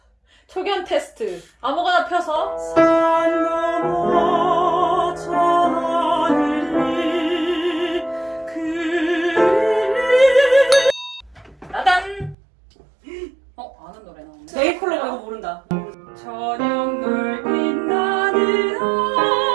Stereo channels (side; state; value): left; drops out; at 12.4 s